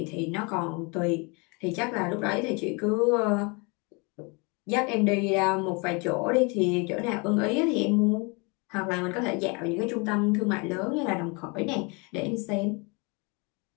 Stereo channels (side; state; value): right; quieter; 30.3 dB